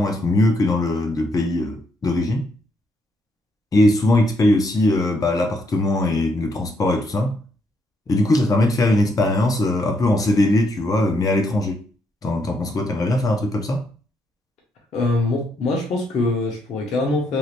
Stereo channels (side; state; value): both; normal; correlation 0.76